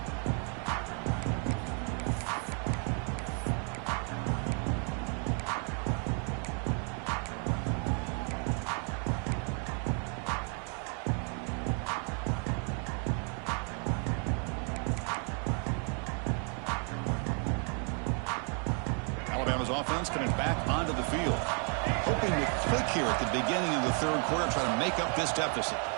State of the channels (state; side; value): quieter; left; 40.0 dB